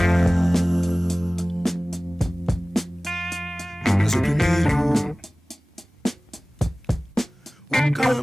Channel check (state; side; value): normal; both; correlation 0.98